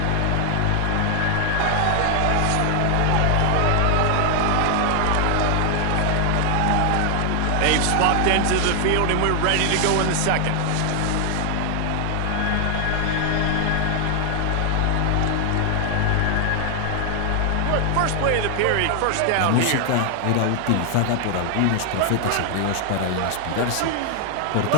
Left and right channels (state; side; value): different; both; correlation 0.00